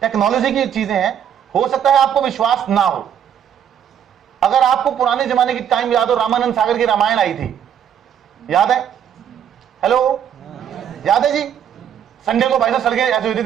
टेक्नोलॉजी की चीजें हैं। हो सकता है आपको विश्वास ना हो। अगर आपको पुराने जमाने की टाइम याद हो, रामानंद सागर की रामायण आई थी, याद है? हेलो, याद है जी? संडे को भाई साहब सड़कें ऐसे होती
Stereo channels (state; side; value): quieter; left; 9.1 dB